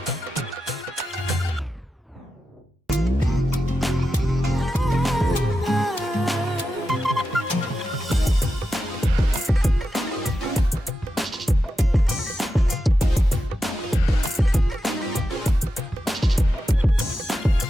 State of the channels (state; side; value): normal; both; correlation 0.89